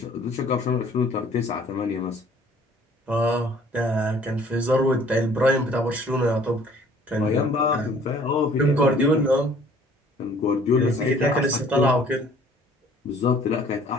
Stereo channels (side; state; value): both; normal; correlation 0.55